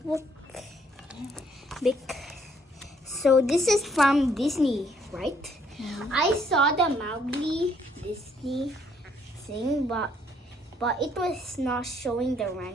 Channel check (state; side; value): normal; both; correlation 0.67